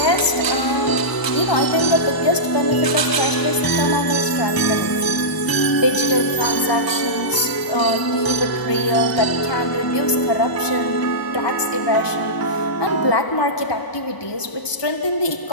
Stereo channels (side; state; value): right; late; 1.0 ms